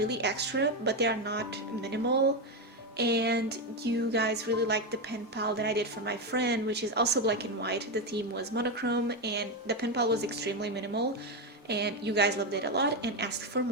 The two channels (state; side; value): normal; both; correlation 0.10